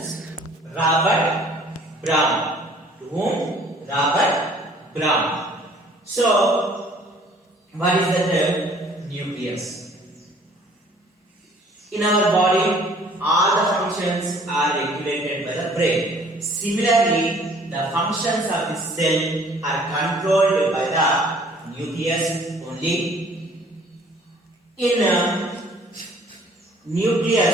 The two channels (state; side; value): normal; both; correlation 0.55